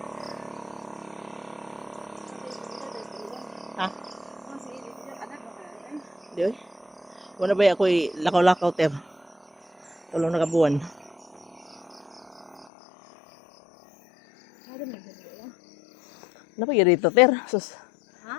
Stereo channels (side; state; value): right; drops out; at 12.7 s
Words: Ha? Di ba? Wala ba ako'y lakaw-lakaw ter? Tulong na kabuan. Ano pa dito ter? Sus. Ha?